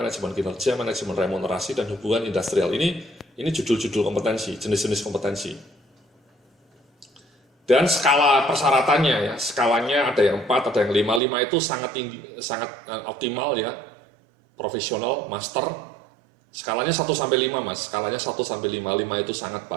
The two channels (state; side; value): drops out; left; at 11.2 s